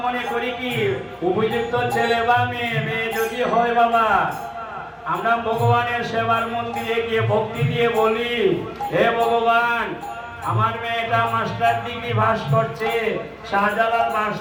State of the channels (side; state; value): both; identical; correlation 1.00